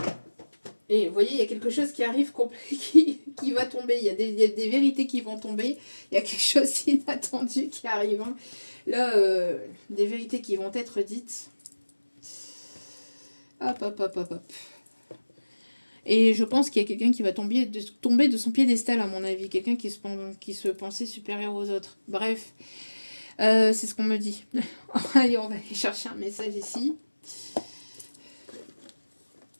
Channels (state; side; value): inverted; both; correlation -1.00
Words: Et vous voyez, il y a quelque chose qui arrive, qui va tomber. Il y a des vérités qui vont tomber. Il y a quelque chose d'inattendu qui arrive. Hein. Là, des vérités qui vont être dites. Hop. Et je pense qu'il y a quelqu'un qui va tomber de son piédestal, à mon avis. Quelqu'un qui se pensait supérieur aux autres. Bref, c'est ce qu'on me dit. Allez, on va aller chercher un message ici.